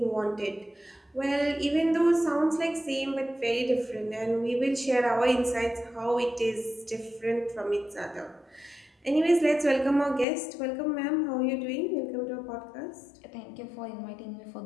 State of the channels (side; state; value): right; drops out; at 10.2 s